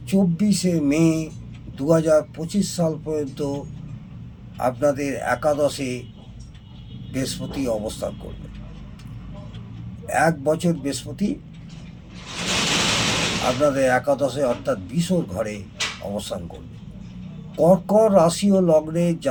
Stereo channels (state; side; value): identical; both; correlation 1.00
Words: 24 মে 2025 সাল পর্যন্ত আপনাদের একাদশে বৃহস্পতি অবস্থান করবে। 1 বছর বৃহস্পতি আপনাদের একাদশে অর্থাৎ বিশর ঘরে অবস্থান করবে। কর্কট রাশি ও লগ্নের